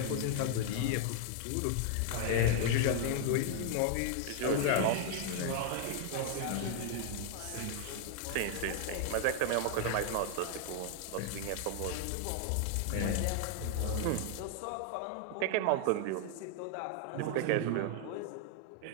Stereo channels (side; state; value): both; different; correlation 0.00